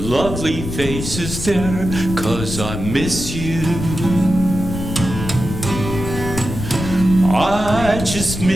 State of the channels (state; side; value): noise; left; rumble, 7 dB below the sound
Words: face is there, 'cause I miss you. I just